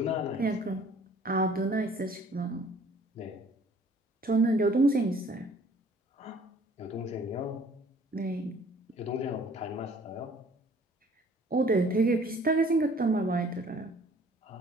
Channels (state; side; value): normal; both; correlation 0.55